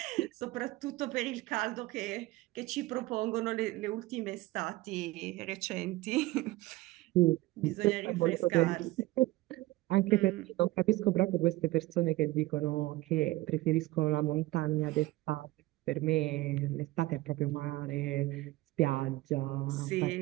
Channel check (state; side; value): quieter; left; 18.9 dB